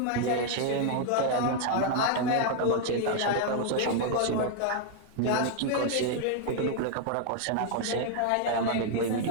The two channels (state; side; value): different; both; correlation 0.00